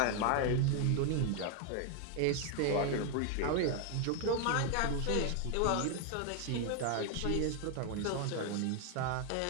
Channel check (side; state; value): both; different; correlation 0.01